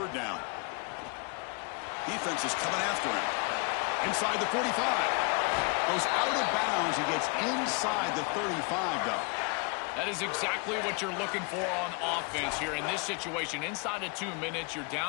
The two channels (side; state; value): right; quieter; 32.8 dB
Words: down. Defense is coming after him. Inside the 45. Goes out of bounds. He gets inside the 35, though. That is exactly what you're looking for on offense here in this situation. Inside of 2 minutes, you're